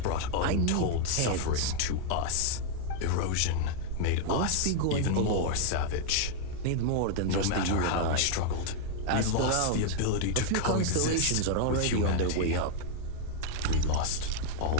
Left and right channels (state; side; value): different; both; correlation 0.00